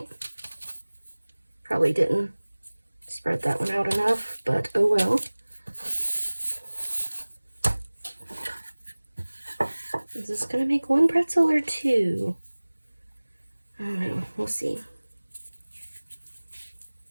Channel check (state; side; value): inverted; both; correlation -1.00